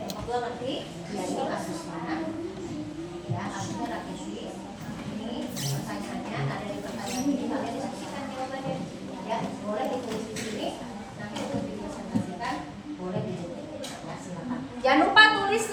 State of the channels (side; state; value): both; identical; correlation 1.00